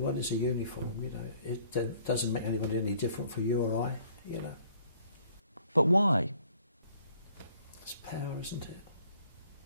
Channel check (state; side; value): inverted; both; correlation -0.60